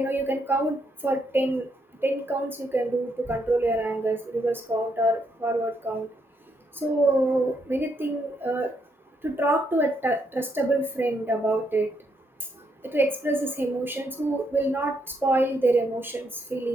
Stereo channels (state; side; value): normal; both; correlation 0.76